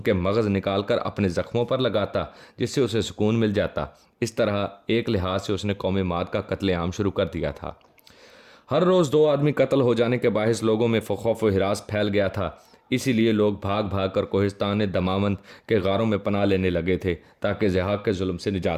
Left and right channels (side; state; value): both; identical; correlation 1.00